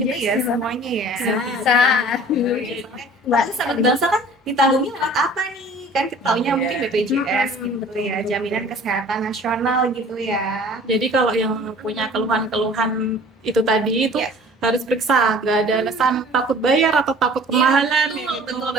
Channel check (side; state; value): both; normal; correlation 0.48